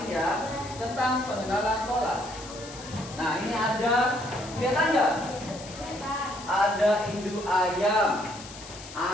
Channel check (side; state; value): left; noise; hiss, 15 dB below the sound